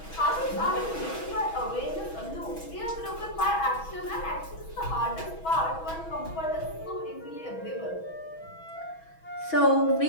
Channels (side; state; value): right; late; 6.2 ms